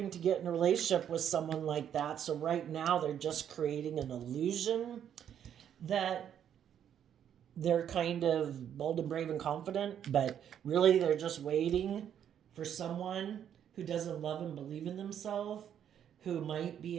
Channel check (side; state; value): left; quieter; 9.4 dB